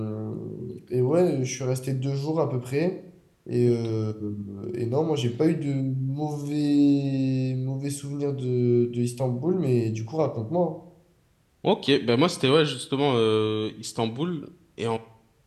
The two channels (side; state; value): both; identical; correlation 1.00